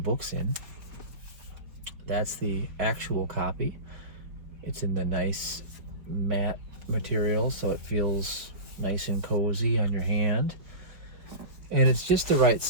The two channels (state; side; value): late; left; 4.3 ms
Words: books in. That's the actual copy. It's in the nice matte material, so it feels nice and cozy on your hand. And it's just the right